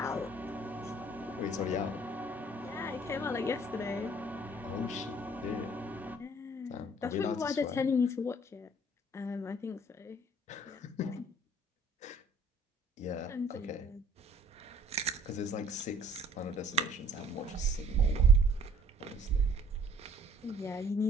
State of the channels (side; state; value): both; normal; correlation 0.56